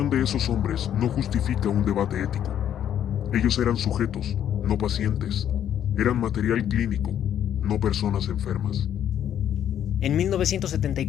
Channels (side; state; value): right; quieter; 10.1 dB